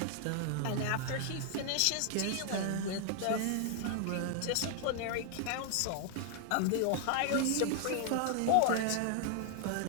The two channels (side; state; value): both; different; correlation 0.00